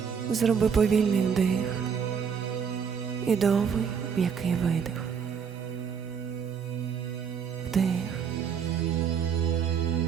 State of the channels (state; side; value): quieter; left; 7.0 dB